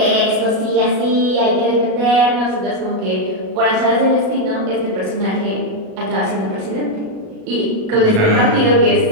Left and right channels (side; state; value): left; late; 37 ms